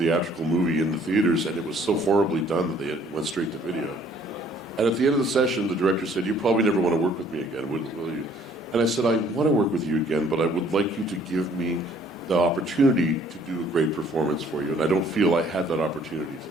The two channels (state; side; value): normal; both; correlation 0.60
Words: movie in the theaters, and it was so horribly done that they went straight to video. And at the end of the session, the director said, you probably never want to work with me again, will you? And I said, I want to work with you again, but I would like you to give me the opportunity to do a great performance for you. And I don't feel I had that opportunity